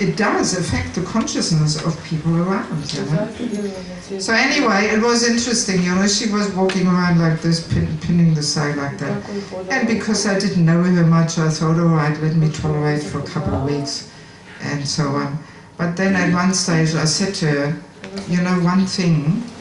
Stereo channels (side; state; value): both; identical; correlation 1.00